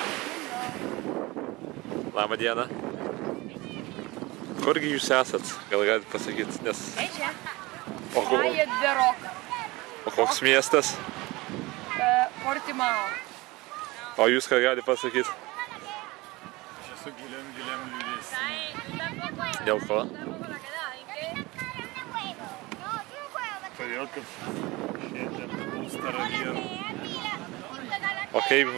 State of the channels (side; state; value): left; quieter; 22.1 dB